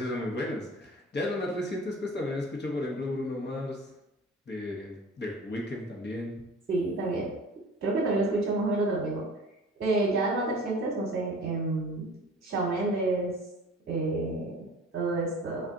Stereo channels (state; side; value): normal; both; correlation 0.43